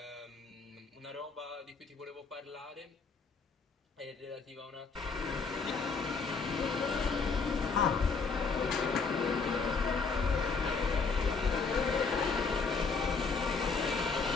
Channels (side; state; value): right; quieter; 4.7 dB